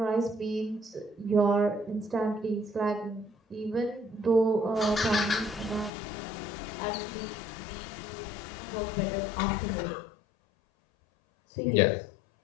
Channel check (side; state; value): right; drops out; at 5.9 s